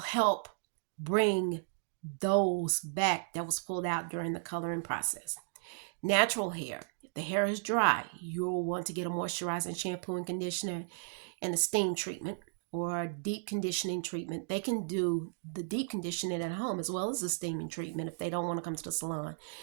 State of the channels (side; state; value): left; silent; digital silence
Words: bring those back that was pulled out during the coloring process. Natural hair. If the hair is dry, you'll want to get a moisturizing shampoo and conditioner and a steam treatment or deep conditioning treatment. They can do the deep conditioning at home as well as the steaming treatment if they don't want to come to the salon.